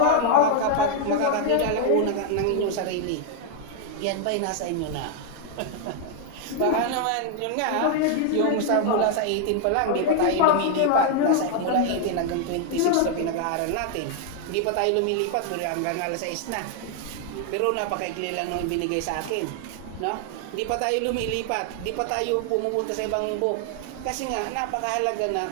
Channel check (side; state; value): both; different; correlation 0.00